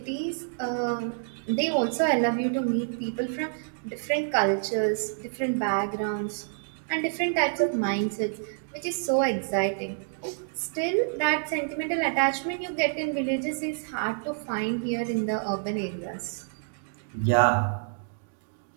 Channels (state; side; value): silent; left; digital silence